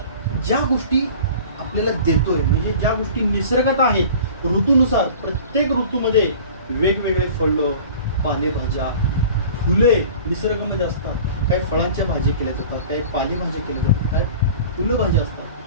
ज्या गोष्टी आपल्याला देतोय, म्हणजे ज्या गोष्टी निसर्गात आहेत, ऋतूनुसार प्रत्येक ऋतूमध्ये वेगवेगळे फळं, पालेभाज्या, फुले निसर्गामध्ये असतात. काही फळांच्या भाजी केल्या जातात, काही पालेभाज्या केल्या जातात, काही फुलं भाज्या असतात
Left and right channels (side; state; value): both; inverted; correlation -0.42